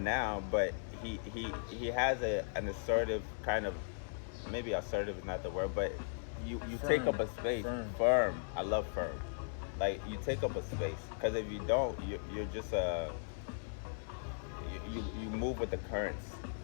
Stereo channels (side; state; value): right; silent; digital silence